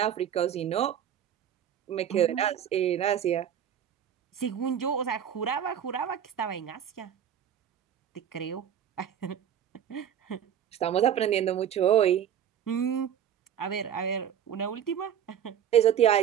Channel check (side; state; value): left; quieter; 9.4 dB